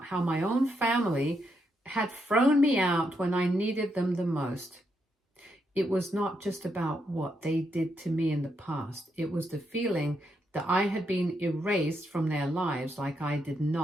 how my own family had thrown me out when I needed them the most. It was not just about what they did to me in the past. It was the feeling that I had been erased from their lives, like I did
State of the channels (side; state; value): both; normal; correlation 0.80